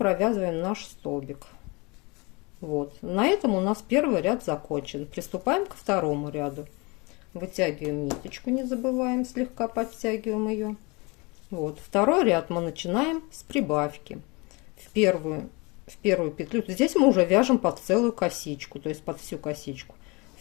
наш столбик. Вот, на этом у нас первый ряд закончен. Приступаем ко второму ряду. Вытягиваем ниточку, не забываем, слегка подтягиваем ее. Вот, второй ряд мы начинаем с прибавки. В первую петлю, здесь мы уже вяжем под целую косичку, то есть под всю косичку.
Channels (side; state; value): right; quieter; 27.3 dB